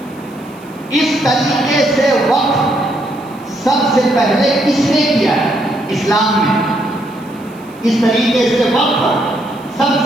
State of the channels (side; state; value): right; noise; hiss, 28 dB below the sound